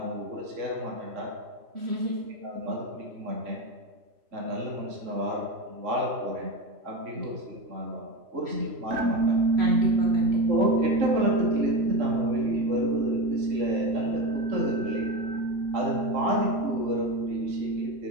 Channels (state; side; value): late; left; 3.5 ms